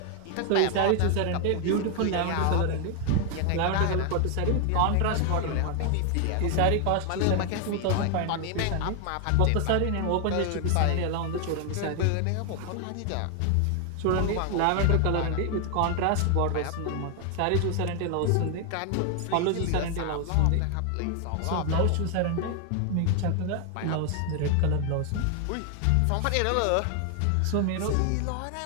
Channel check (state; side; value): different; both; correlation 0.00